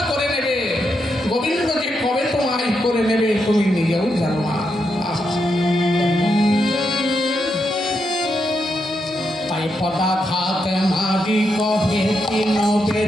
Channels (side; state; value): both; normal; correlation 0.83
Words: করে নেবে, গোবিন্দ যে কবে তোমায় করে নেবে তুমি নিজেও জানো না। তাই পদাঘাত মারি কহে তিন